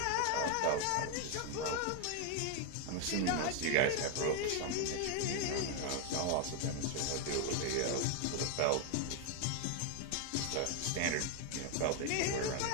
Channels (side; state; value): both; different; correlation 0.01